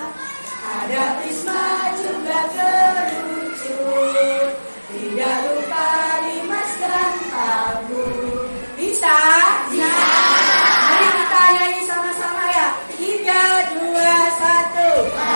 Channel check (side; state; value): both; inverted; correlation -1.00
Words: ada prisma juga kerucut, tidak lupa limas dan tabung. Bisa? Bisa. Mari kita nyanyi sama-sama ya. 3, 2, 1.